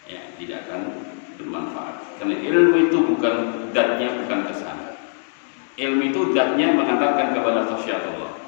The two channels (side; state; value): right; silent; 64 dB below the other